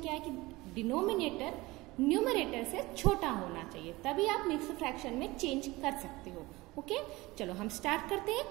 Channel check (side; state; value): left; quieter; 20.8 dB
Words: है कि डिनोमिनेटर न्यूमरेटर से छोटा होना चाहिए, तभी आप मिक्स्ड फ्रैक्शन में चेंज कर सकते हो। ओके, चलो हम स्टार्ट करते हैं